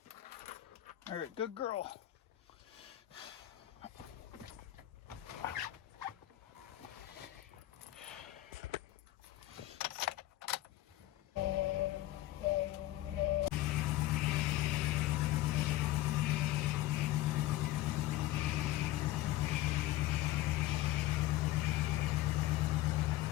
All right, good girl.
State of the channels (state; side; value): quieter; right; 15.7 dB